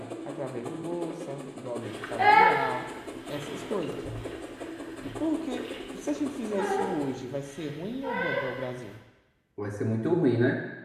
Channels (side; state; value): both; identical; correlation 1.00